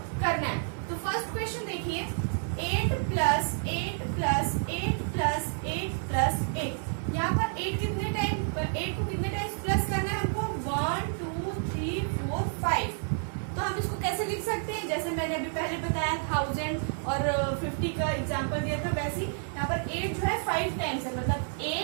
करना है। तो फर्स्ट क्वेश्चन देखिए, 8 प्लस 8 प्लस 8 प्लस 8 प्लस 8। यहाँ पर 8 को कितने टाइम्स प्लस करना है हमको? 1 2 3 4 5। तो हम इसको कैसे लिख सकते हैं? जैसे मैंने अभी पहले बताया 1000 और 50 का एग्जांपल दिया था, वैसे ही यहाँ पर 8 जो है 5 टाइम्स है। मतलब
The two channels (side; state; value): left; silent; 58 dB below the other